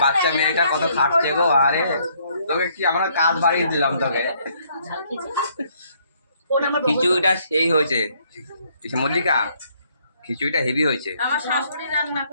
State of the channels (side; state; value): both; inverted; correlation -0.67